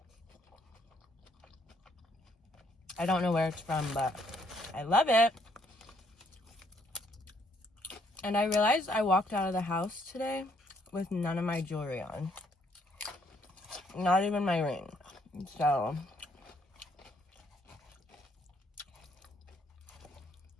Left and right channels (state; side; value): normal; both; correlation 0.69